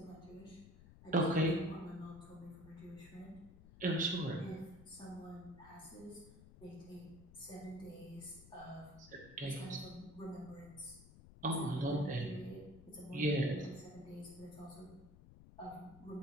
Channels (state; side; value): noise; left; rumble, 18 dB below the sound